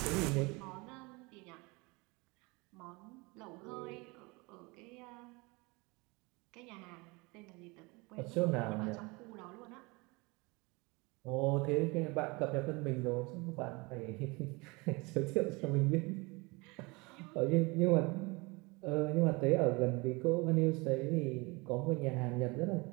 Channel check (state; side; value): quieter; left; 26.1 dB